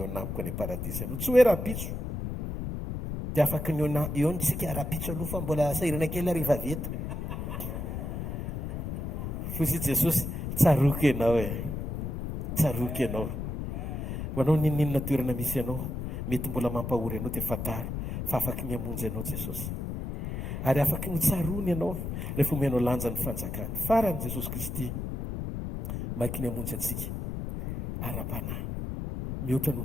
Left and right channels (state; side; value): noise; left; rumble, 4 dB below the sound